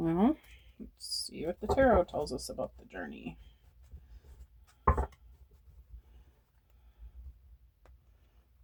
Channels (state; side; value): identical; both; correlation 1.00